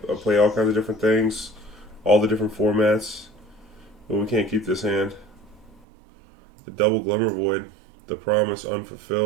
all kinds of different things, all the different formats. But we can't keep this hand. The double Glimmervoid, the promise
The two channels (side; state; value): left; drops out; at 5.9 s